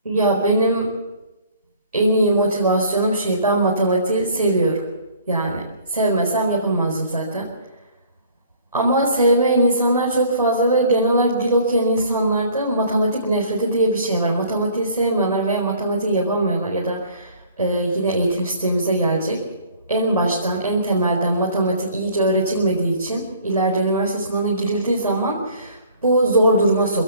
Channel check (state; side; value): inverted; both; correlation -0.54